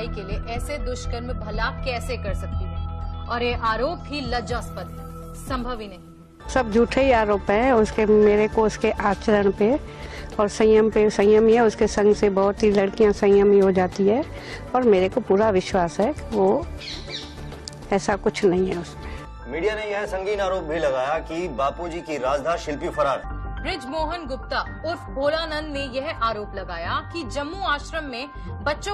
के लिए ऐसे दुष्कर्म भला कैसे कर सकती है, और ये आरोप ही लज्जास्पद है, संभव ही नहीं। सब झूठे ही आरोप है उसके, मेरे को उसके आचरण पे और संयम पे। संयम है उसके संग से बहुत ही लड़कियां संयमी हो जाती है और मेरे को पूरा विश्वास है कि वो ऐसा कुछ नहीं है उसमें। मीडिया ने यह संगीन आरोप भी लगाया कि बापूजी की राजधार शिल्पी फरार है। ब्रिजमोहन गुप्ता उर्फ भोलानंद ने यह आरोप लगाया कि जम्मू आश्रम में बच्चों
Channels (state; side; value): identical; both; correlation 1.00